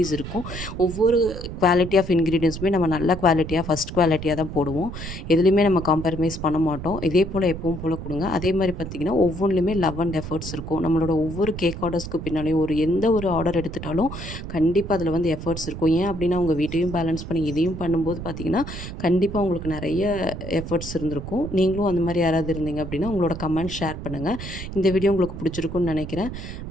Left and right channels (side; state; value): right; noise; rumble, 9 dB below the sound